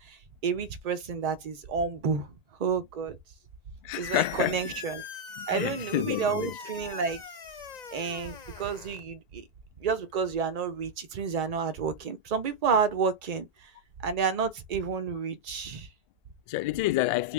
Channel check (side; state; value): left; late; 1.8 ms